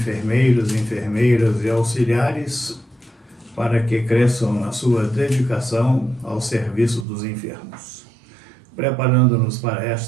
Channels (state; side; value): drops out; left; at 7.1 s